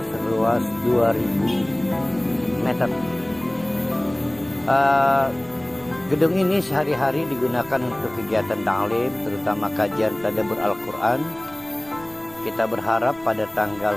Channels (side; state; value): right; noise; rumble, 24 dB below the sound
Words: seluas 2000 meter. Gedung ini sehari-hari digunakan untuk kegiatan ta'lim, terutama kajian tadabbur Al-Quran. Kita berharap pada tanggal